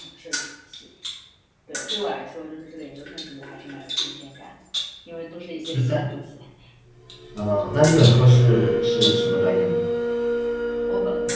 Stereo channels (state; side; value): identical; both; correlation 1.00